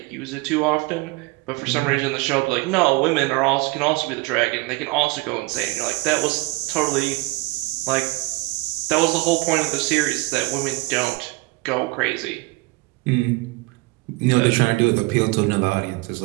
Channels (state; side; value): quieter; left; 22.7 dB